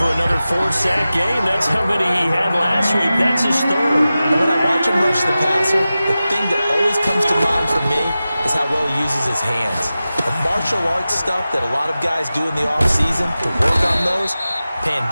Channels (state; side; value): inverted; both; correlation -0.94